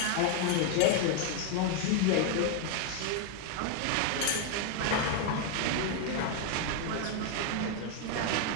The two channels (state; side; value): different; both; correlation 0.00